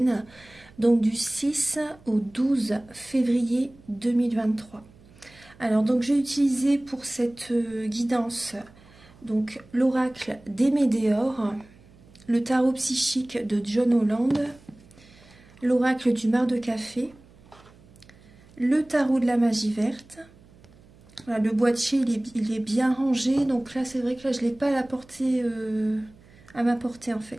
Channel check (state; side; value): noise; right; hum, 26 dB below the sound